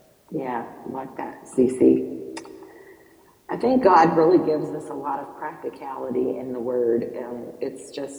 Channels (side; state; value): both; identical; correlation 1.00